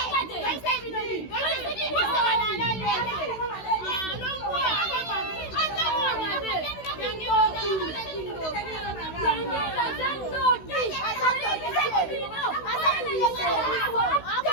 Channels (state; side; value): late; right; 16 ms